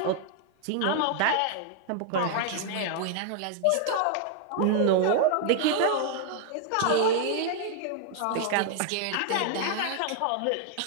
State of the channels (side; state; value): both; different; correlation 0.00